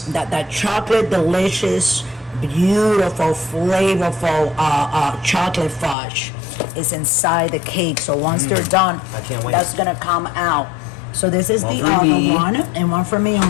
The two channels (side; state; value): right; drops out; at 6.0 s